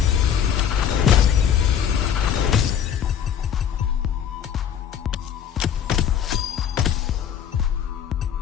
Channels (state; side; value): quieter; right; 8.8 dB